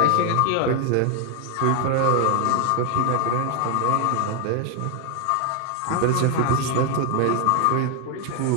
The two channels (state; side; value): different; both; correlation 0.00